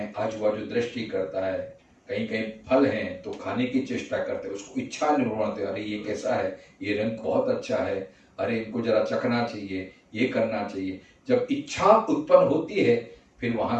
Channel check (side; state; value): both; identical; correlation 1.00